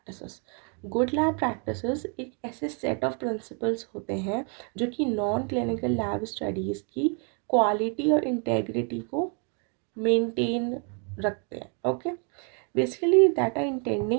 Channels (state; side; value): quieter; left; 38.9 dB